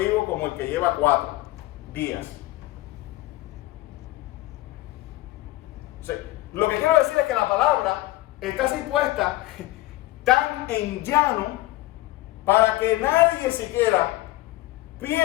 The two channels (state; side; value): quieter; right; 17.8 dB